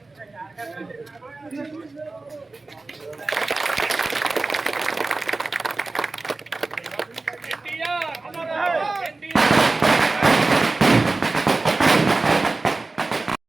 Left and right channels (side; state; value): left; quieter; 3.4 dB